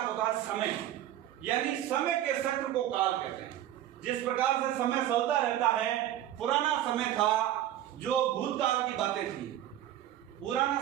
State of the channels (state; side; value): quieter; left; 12.4 dB